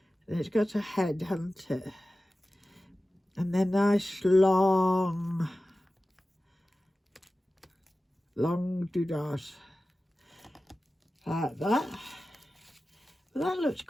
And it's got a head, hasn't it? And then nice long doodahs. Like that. Well, that looks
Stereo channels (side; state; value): both; normal; correlation 0.95